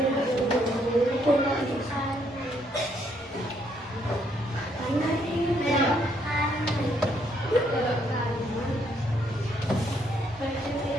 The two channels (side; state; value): both; normal; correlation 0.71